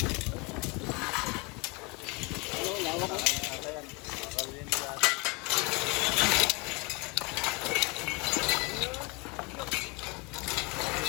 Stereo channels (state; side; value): quieter; right; 28.7 dB